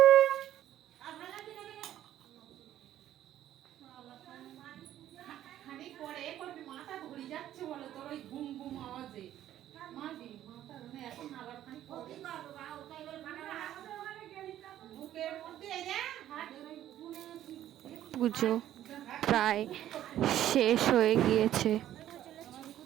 মাথা ধরে যাচ্ছে বলো তোর ওই ঘুম ঘুম আওয়াজে মারবি মাথা এখন আবার বুকের মধ্যে পুজো প্রায় শেষ হয়ে গিয়েছে।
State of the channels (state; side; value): quieter; left; 12.2 dB